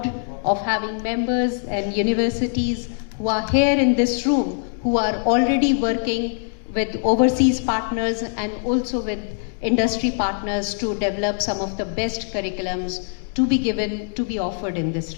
of having members and universities who are here in this room who are already working with overseas partners and also with industry partners to develop some of the best curriculums to be offered in this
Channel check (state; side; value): silent; right; 64 dB below the other